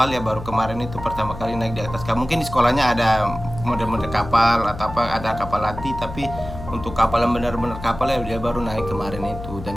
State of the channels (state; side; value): noise; left; hum, 11 dB below the sound